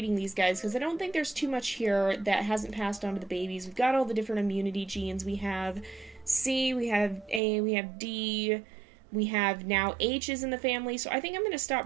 these guys because I don't think there's too much here that hasn't passed on to the babies. We've got all the different immunity genes. We have C, we have A, we have D, we have now H's in the family. So I think I'm going to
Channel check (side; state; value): left; drops out; at 7.4 s